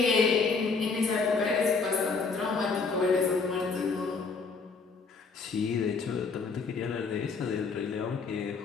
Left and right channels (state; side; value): quieter; right; 4.6 dB